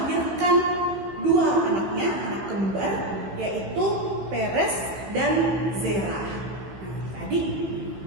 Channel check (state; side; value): late; left; 15 ms